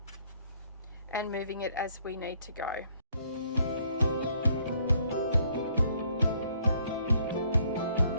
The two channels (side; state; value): both; inverted; correlation -0.66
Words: and moving it as we need to go.